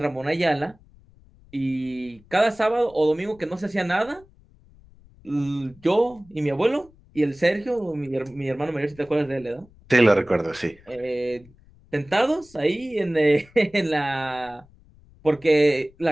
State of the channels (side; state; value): left; noise; rumble, 27 dB below the sound